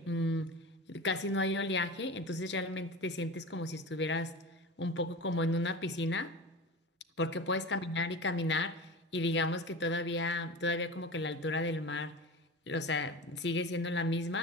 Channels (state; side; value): normal; both; correlation 0.31